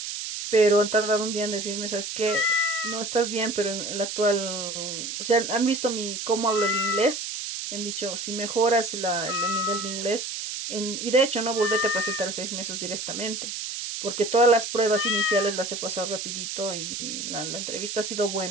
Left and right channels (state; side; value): noise; right; hiss, 5 dB below the sound